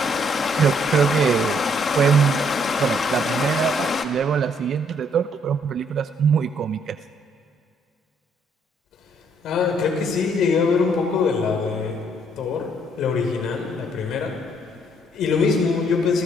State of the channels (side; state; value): both; normal; correlation 0.67